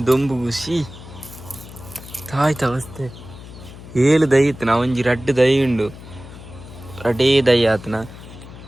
దొంಬು ಖುಷಿ ತಾಯ್ತ ಅವಸ್ಥೆ ಏಳು ದೈ ಇತ್ತು ನಾ ಒಂಜಿ ರಡ್ಡು ದೈ ಉಂಡು ರಡೇ ದೈ ಆತನ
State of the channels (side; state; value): left; noise; hum, 16 dB below the sound